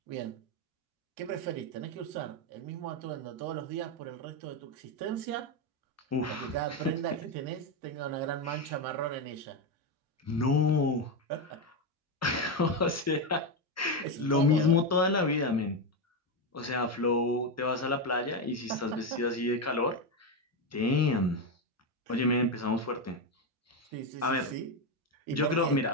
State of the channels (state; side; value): normal; both; correlation 0.09